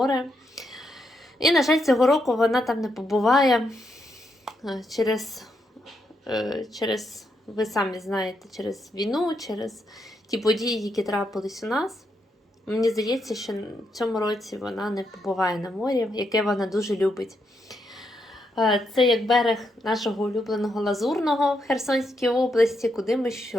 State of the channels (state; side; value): normal; both; correlation 0.80